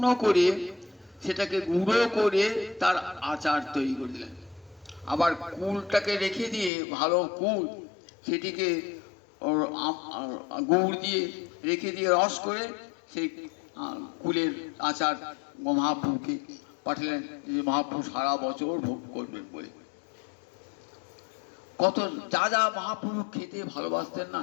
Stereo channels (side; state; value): right; drops out; at 6.7 s